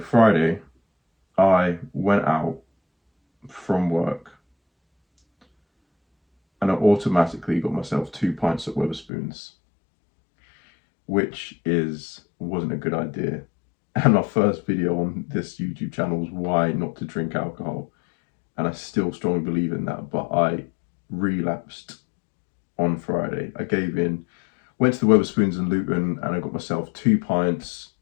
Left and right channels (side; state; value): right; drops out; at 9.1 s